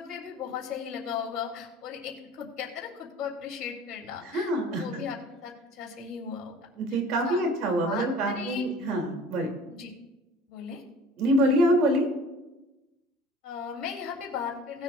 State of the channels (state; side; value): normal; both; correlation 0.46